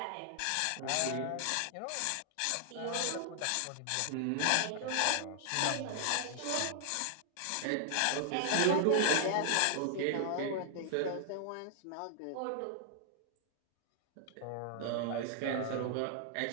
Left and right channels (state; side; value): different; both; correlation 0.00